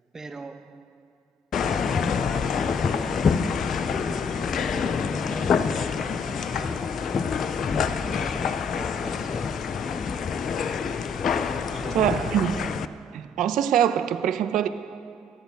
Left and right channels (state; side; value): normal; both; correlation 0.62